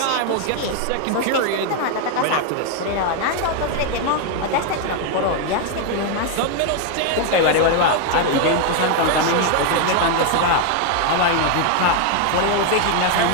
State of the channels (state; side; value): different; both; correlation 0.01